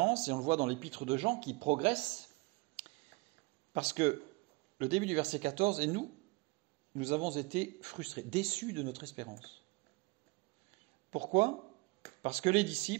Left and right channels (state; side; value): quieter; left; 25.2 dB